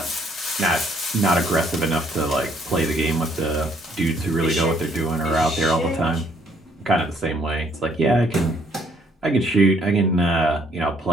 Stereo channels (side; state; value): both; normal; correlation 0.65